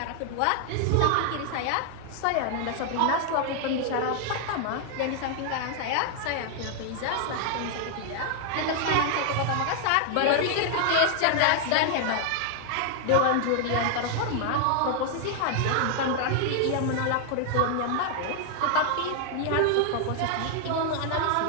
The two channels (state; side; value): different; both; correlation 0.00